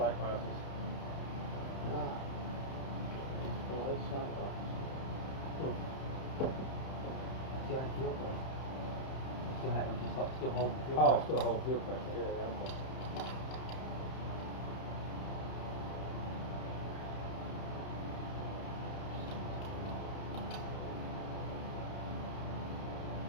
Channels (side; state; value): right; late; 31 ms